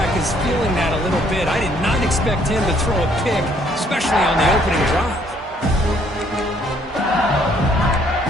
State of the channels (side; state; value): both; normal; correlation 0.65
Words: is feeling that a little bit. I did not expect him to throw a pick, especially on the opening drive.